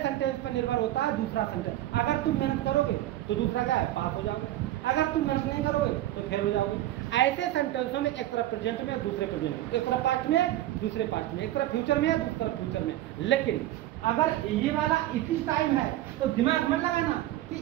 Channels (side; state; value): left; quieter; 14.3 dB